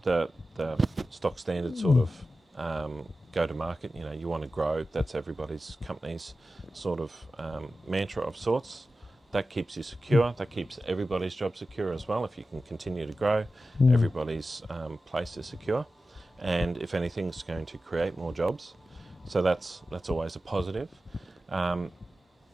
the stock standard sort of go to market. You want to grow. That's everybody's company's sort of mantra of sorts. That keeps you secure. That keeps everybody's job secure as well. If you can continue to grow, everybody's place is secure. And if anything, it's going to create more jobs. So that's always a positive.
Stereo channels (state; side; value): normal; both; correlation 0.93